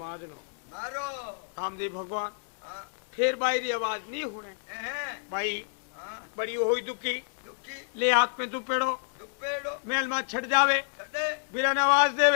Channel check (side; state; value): right; silent; digital silence